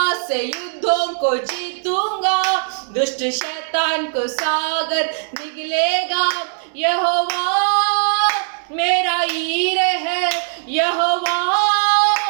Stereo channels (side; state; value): left; silent; digital silence